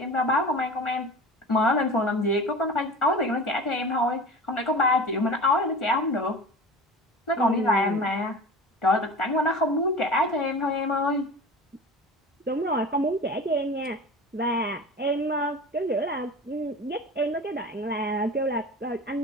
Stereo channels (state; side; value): normal; both; correlation 0.35